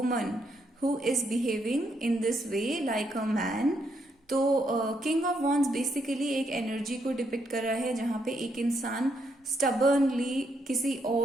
who is behaving in this way like a man. तो किंग ऑफ वॉन्ड्स बेसिकली एक एनर्जी को डिपिक्ट कर रहा है जहाँ पे एक इंसान स्टबर्नली किसी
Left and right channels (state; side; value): normal; both; correlation 0.77